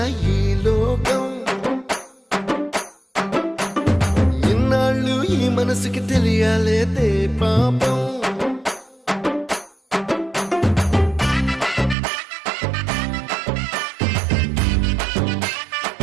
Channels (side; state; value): left; drops out; at 12.0 s